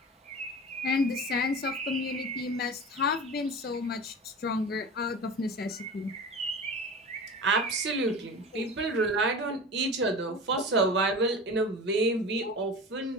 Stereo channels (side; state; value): both; normal; correlation 0.33